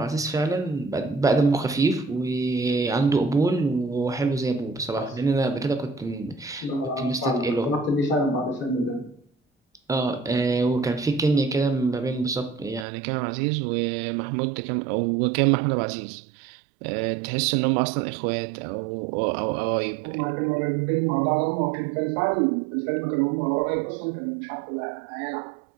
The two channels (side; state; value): left; drops out; at 12.9 s